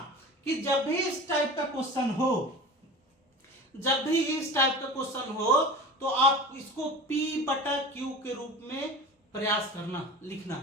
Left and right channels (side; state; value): both; normal; correlation 0.35